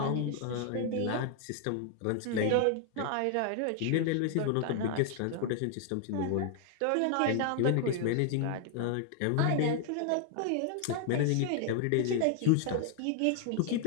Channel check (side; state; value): both; different; correlation 0.00